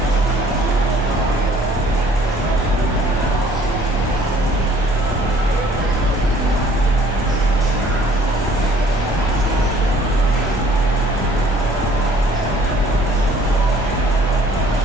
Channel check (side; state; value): both; normal; correlation 0.57